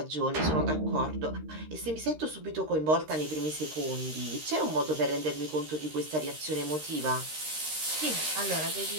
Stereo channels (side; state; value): left; late; 13 ms